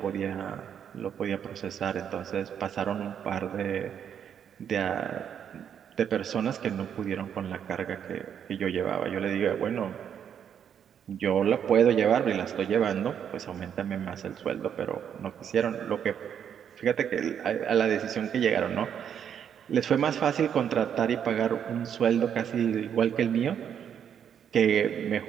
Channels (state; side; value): quieter; left; 8.5 dB